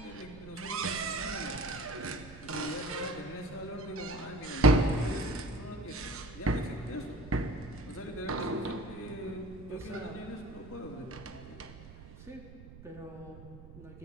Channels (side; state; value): right; noise; rumble, 16 dB below the sound